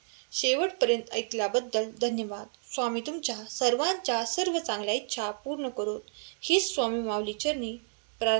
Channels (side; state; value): left; silent; 58 dB below the other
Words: शेवटपर्यंत ऐकल्याबद्दल धन्यवाद. स्वामी तुमच्या सर्वांच्या सर्व चांगल्या इच्छा पूर्ण करोत, हीच स्वामी माऊली चरणी